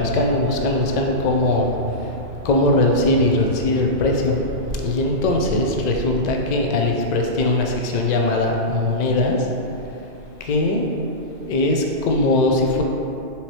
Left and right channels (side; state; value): left; late; 2.0 ms